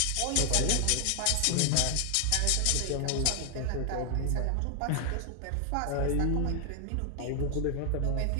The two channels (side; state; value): both; different; correlation 0.00